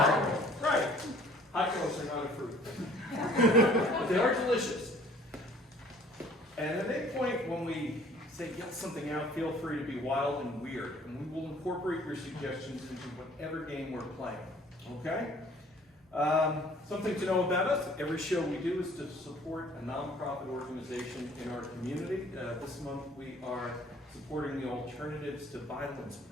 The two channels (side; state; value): both; normal; correlation 0.55